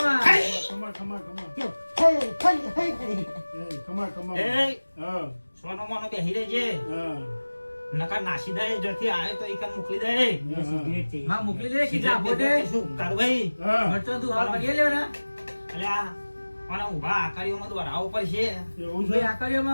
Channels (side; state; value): both; inverted; correlation -1.00